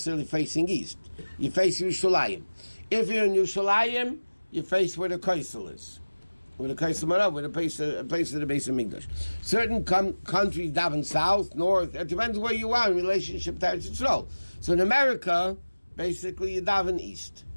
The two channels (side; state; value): both; inverted; correlation -1.00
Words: facing east. You face Yerushalayim. If you're in Yerushalayim, you face where the Kaisel is. with a Kaisam with a place of the base of Migdash. Certain countries daven south, north. It depends where you are in relationship to Eretz Yisrael. So in America, basically you daven east.